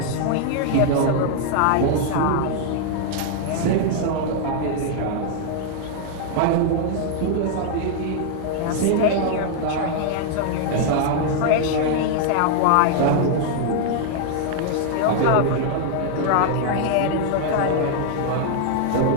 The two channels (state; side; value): different; both; correlation 0.00